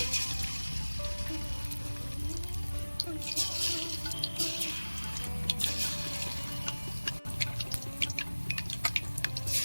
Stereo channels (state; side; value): inverted; both; correlation -1.00